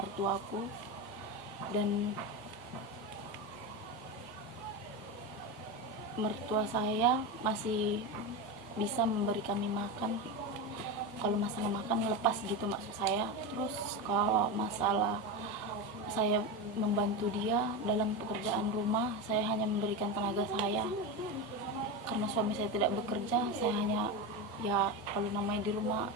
dan mertua saya masih bisa memberi kami makan. Kalau masalah makan lepas gitu maksud saya. Terus kalau masalah saya membantu dia dalam pekerjaan rumah, saya hanya memberikan tenaga saya. Karena suami saya tidak bekerja, saya hanya kalau namanya di rumah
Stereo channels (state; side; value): normal; both; correlation 0.17